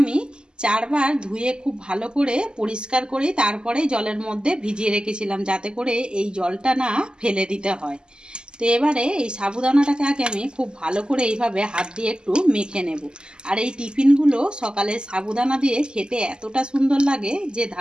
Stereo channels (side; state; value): left; late; 0.047 ms